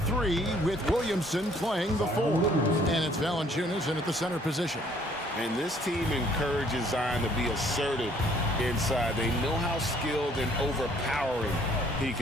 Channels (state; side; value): normal; both; correlation 0.61